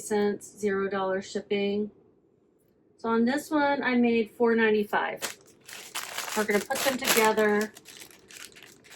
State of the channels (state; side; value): identical; both; correlation 1.00